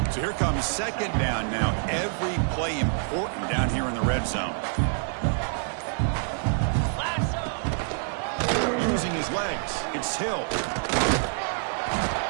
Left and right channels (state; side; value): silent; left; 60 dB below the other